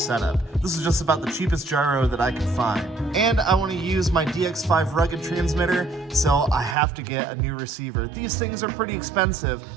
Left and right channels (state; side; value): drops out; left; at 6.8 s